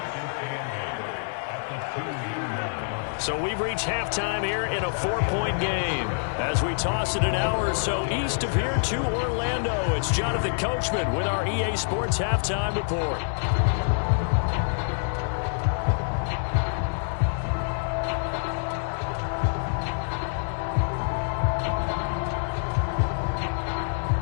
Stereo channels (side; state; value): right; silent; 61 dB below the other